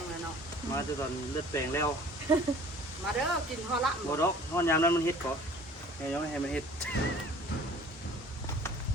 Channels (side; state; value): both; normal; correlation 0.49